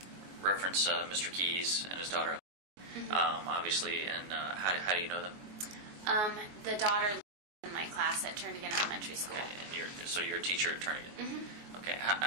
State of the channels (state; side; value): late; left; 22 ms